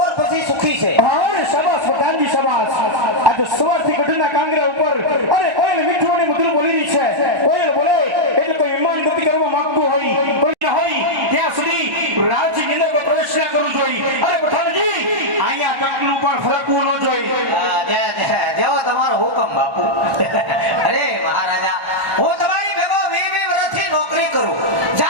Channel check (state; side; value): late; left; 1.3 ms